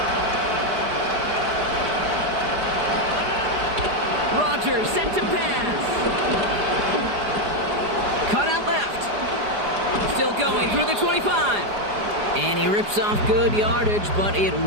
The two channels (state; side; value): late; left; 4.9 ms